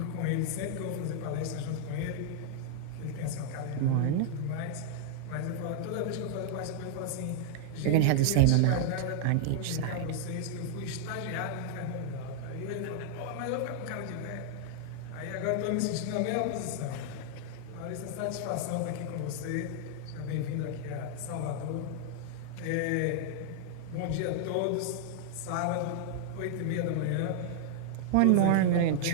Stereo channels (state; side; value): different; both; correlation -0.01